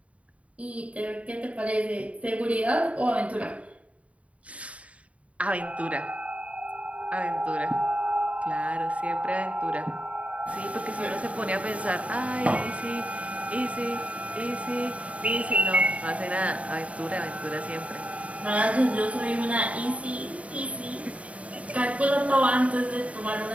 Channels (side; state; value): left; late; 0.066 ms